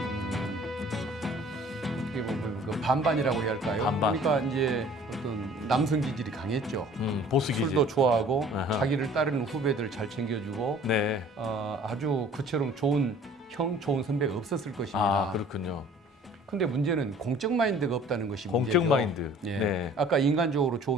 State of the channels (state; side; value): normal; both; correlation 0.51